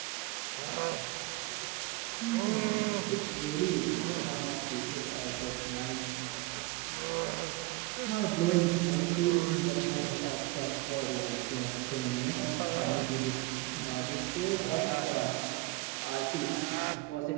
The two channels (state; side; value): quieter; left; 22.6 dB